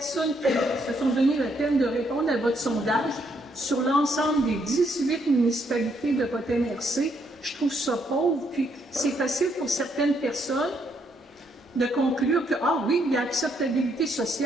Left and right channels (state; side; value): normal; both; correlation 0.73